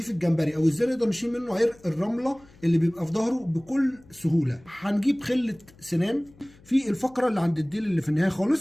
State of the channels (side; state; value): left; noise; hum, 26 dB below the sound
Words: الجمبري، او ازاي نقدر نشيل منه عرق الرمله اللي بيبقى في ظهره بكل سهوله. هنجيب خله سنان في الفقره اللي عند الديل اللي في النهايه